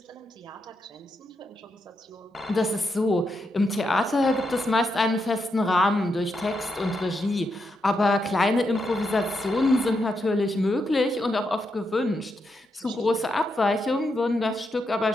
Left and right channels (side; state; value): both; normal; correlation 0.83